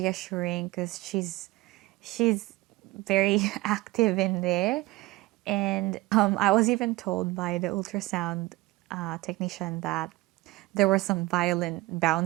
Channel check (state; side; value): quieter; left; 20.2 dB